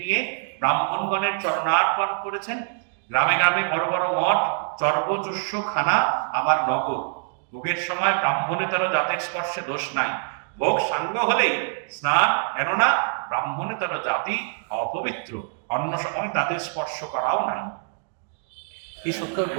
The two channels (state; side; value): silent; left; digital silence